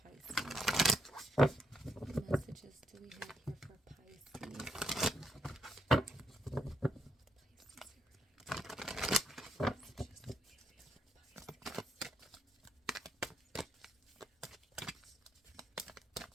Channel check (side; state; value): both; normal; correlation 0.77